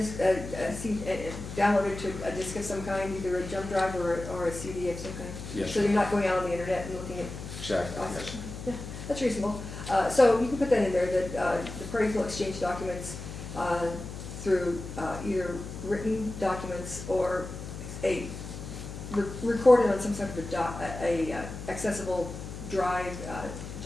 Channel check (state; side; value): noise; left; hum, 9 dB below the sound